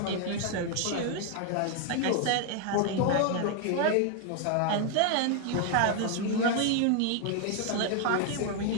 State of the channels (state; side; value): different; both; correlation 0.00